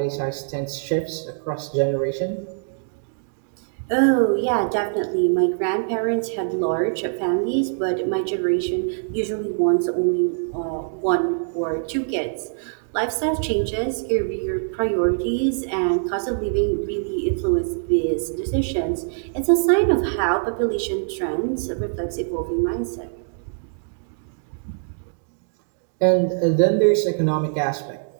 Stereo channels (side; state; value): left; silent; digital silence